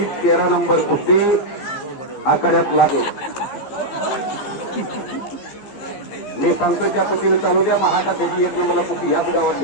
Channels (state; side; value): late; right; 15 ms